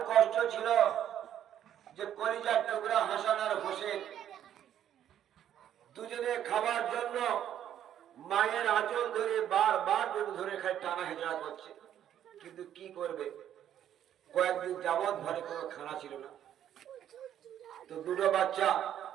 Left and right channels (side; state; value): left; quieter; 10.5 dB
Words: কষ্ট ছিল যে কলিজার টুকরা হাসান আর হোসেন দুজনে খাবার জন্য মায়ের আঁচল ধরে বারবার ধরে খাই টানা হেঁচড়া করছে। কিন্তু কি করবে, কয়েকদিন যাবৎ ঘরে কোনো খানা ছিল না। তো দুটো বাচ্চা